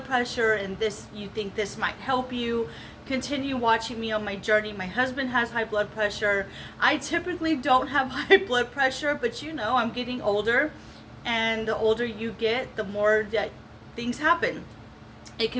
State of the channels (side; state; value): both; identical; correlation 1.00